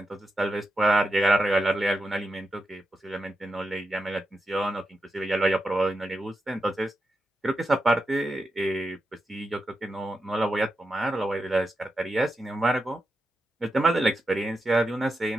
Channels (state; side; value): normal; both; correlation 0.88